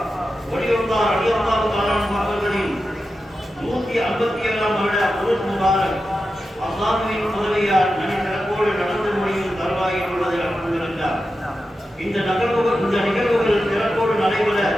ஒளியுல்லாஹ் ரலியல்லாஹு தஆலா அவர்களின் 157ஆம் வருட உருஸ் முபாரக் அல்லாஹ்வின் உதவியால் நனிசிறப்போடு நடந்து முடியும் தருவாயில் உள்ளது. அல்ஹம்துலில்லாஹ். இந்த நிகழ்வுகள் சிறப்போடு நடைபெற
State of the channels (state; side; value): normal; both; correlation 0.91